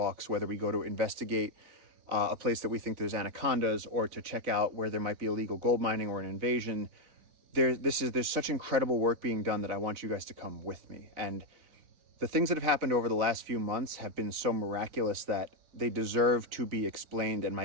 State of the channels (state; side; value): late; left; 3.9 ms